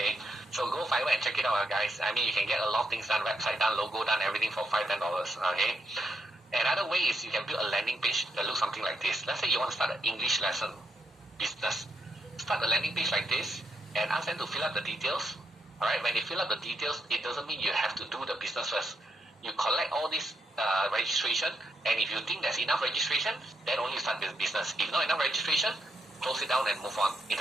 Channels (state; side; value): normal; both; correlation 0.79